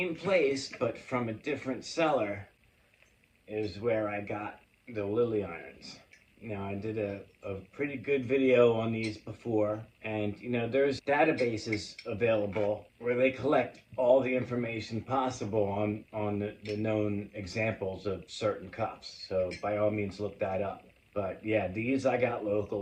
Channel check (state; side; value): identical; both; correlation 1.00